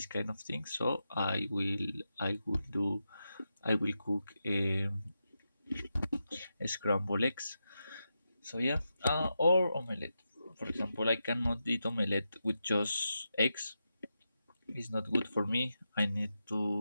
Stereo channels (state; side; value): inverted; both; correlation -0.88